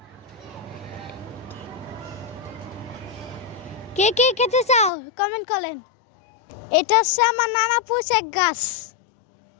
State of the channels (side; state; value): right; drops out; at 4.9 s